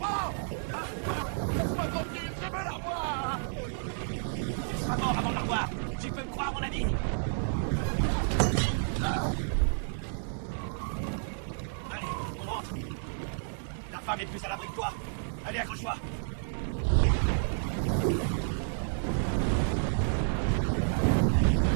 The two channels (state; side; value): silent; left; 57 dB below the other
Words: Laisse-moi tranquille, je veux la revoir! Tu seras mort avant de la revoir. Tu peux me croire, mon ami. Allez, on rentre. La femme est plus à l'abri que toi. Allez, accroche-toi.